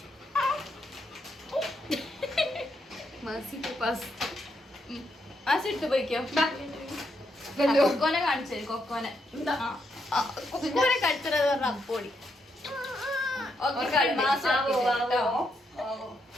എടുത്ത് പോയിക്കോ. കൊക്കോനെ കാണിച്ചു. കൊക്കോനെ കടിച്ചത് പറഞ്ഞ അപ്പോടി.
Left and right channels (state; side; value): normal; both; correlation 0.79